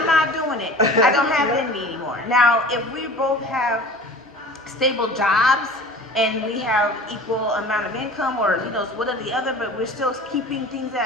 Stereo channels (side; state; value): both; normal; correlation 0.41